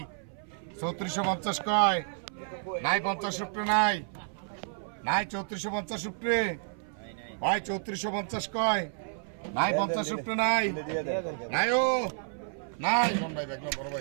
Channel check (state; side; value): silent; left; 56 dB below the other